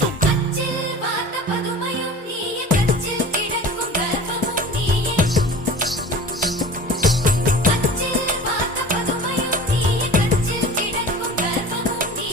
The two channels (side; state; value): both; normal; correlation 0.38